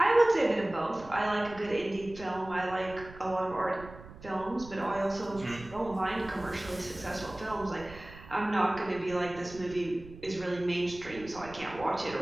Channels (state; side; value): noise; right; rumble, 17 dB below the sound